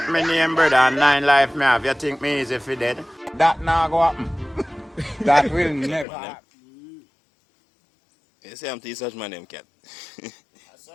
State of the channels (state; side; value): drops out; right; at 6.1 s